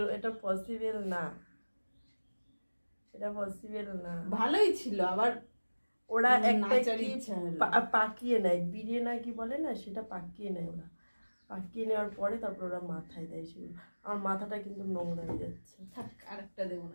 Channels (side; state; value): both; inverted; correlation -1.00